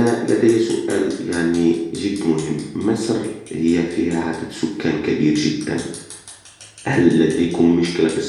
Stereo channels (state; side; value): identical; both; correlation 1.00